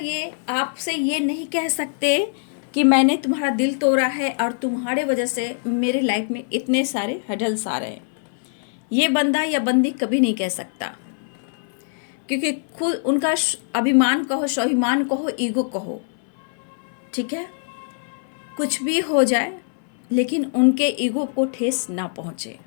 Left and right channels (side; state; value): right; silent; 61 dB below the other